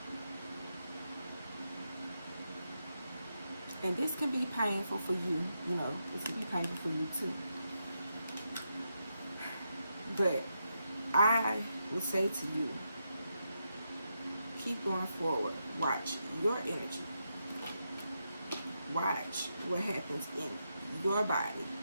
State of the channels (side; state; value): both; inverted; correlation -0.84